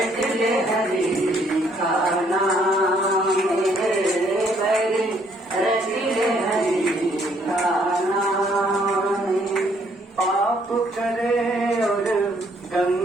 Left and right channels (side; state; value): both; normal; correlation 0.67